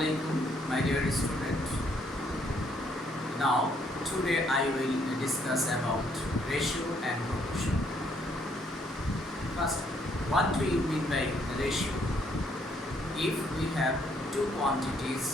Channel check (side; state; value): both; normal; correlation 0.69